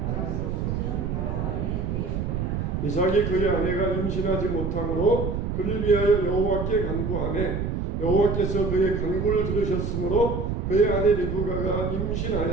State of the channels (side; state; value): right; noise; rumble, 2 dB below the sound